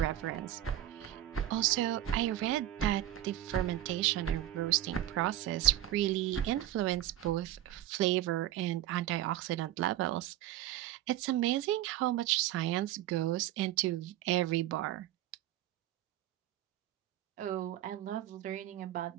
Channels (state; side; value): quieter; left; 13.3 dB